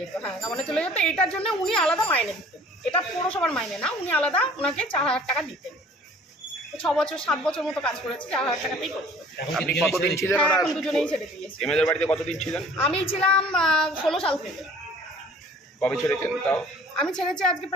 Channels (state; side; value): normal; both; correlation 0.51